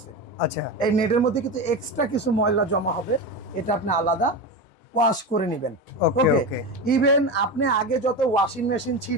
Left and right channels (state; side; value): normal; both; correlation 0.21